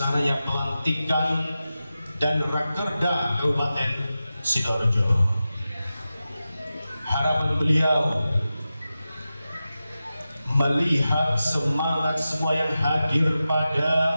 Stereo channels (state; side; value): inverted; both; correlation -0.92